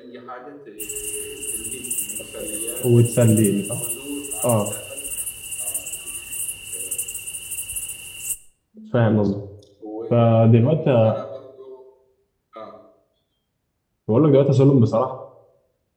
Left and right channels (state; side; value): identical; both; correlation 1.00